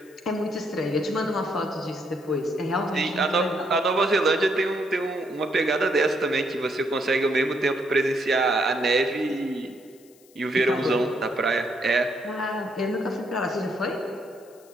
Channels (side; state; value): left; noise; hiss, 28 dB below the sound